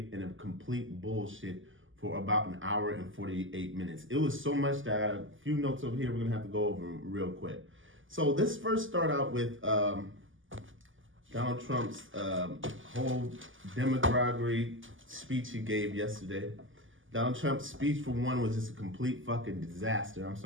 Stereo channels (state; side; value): late; left; 0.58 ms